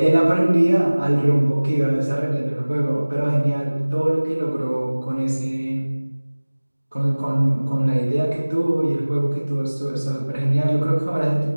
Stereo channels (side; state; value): both; inverted; correlation -1.00